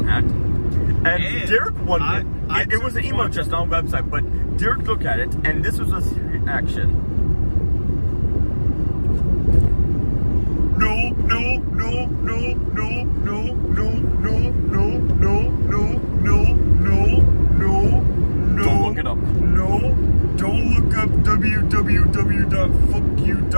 hat. And Derek wondered, it was an email address, not a website, but Derek looked at it, and this was his reaction. No. Don't look it up. No, don't look up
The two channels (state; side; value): inverted; both; correlation -1.00